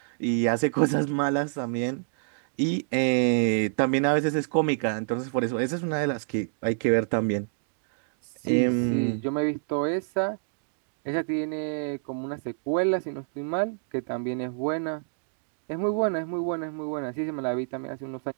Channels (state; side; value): silent; left; digital silence